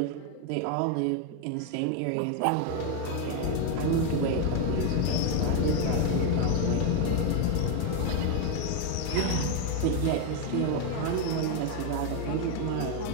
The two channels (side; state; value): both; different; correlation 0.02